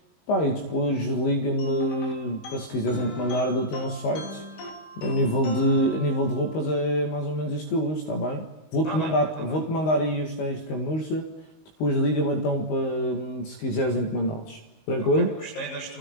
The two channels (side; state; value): right; late; 19 ms